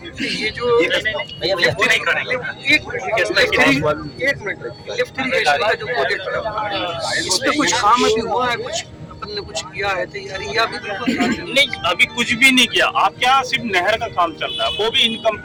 ये जो लिफ्ट नहीं करेंगे, एक मिनट, लिफ्ट इरिगेशन का जो प्रोजेक्ट है, इस पे कुछ काम अभी हुआ है, कुछ अपन ने कुछ किया है तैयारी, या अभी नहीं, अभी कुछ भी नहीं किया। आपके यहाँ सिर्फ नहर का काम चल रहा है, वो भी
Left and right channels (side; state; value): both; identical; correlation 1.00